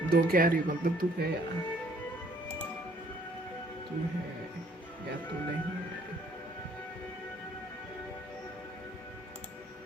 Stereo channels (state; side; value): normal; both; correlation 0.61